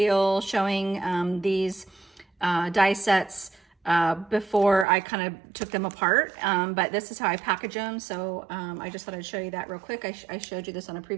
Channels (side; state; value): left; drops out; at 4.9 s